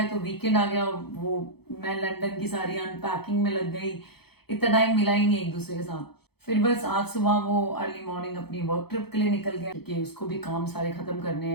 तो वीकेंड आ गया, वो मैं लंदन की सारी अनपैकिंग में लग गई, इतना टाइम मिला ही नहीं एक दूसरे के साथ। फिर बस आज सुबह वो अर्ली मॉर्निंग अपनी वर्क ट्रिप के लिए निकल गया, क्योंकि उसको भी काम सारे खत्म करने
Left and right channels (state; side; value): late; right; 0.97 ms